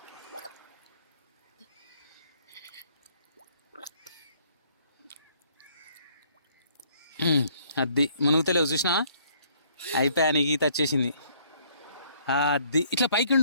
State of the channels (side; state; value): both; inverted; correlation -0.63